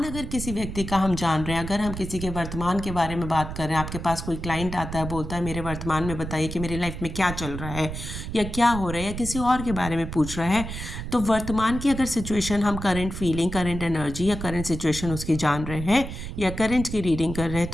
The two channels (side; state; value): right; noise; rumble, 7 dB below the sound